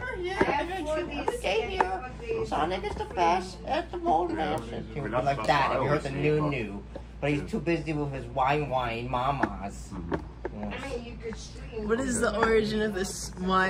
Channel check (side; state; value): both; identical; correlation 1.00